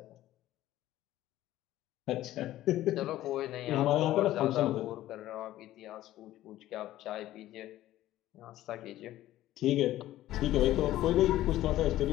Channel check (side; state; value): right; quieter; 14.5 dB